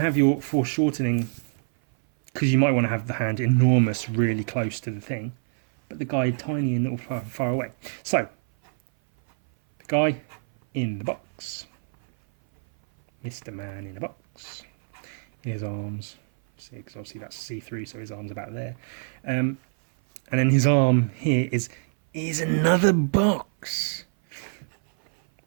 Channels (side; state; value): left; silent; 58 dB below the other